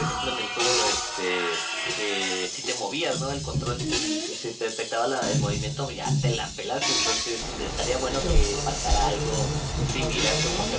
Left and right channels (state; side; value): identical; both; correlation 1.00